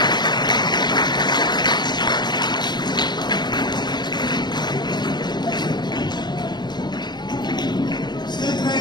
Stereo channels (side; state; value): right; late; 0.21 ms